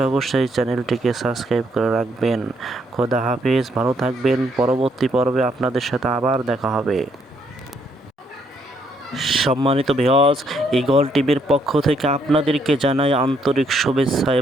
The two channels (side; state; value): both; normal; correlation 0.71